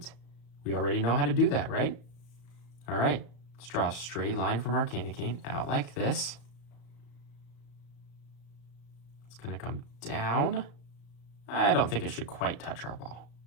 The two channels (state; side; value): late; right; 34 ms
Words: we already know how to do that, right? All right, let's draw a straight line from our candy cane out like this. It's going to come down. I don't think it should quite touch our ball.